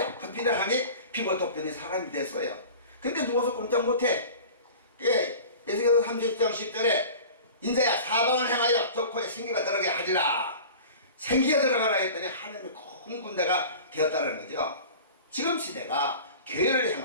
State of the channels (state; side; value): inverted; both; correlation -0.39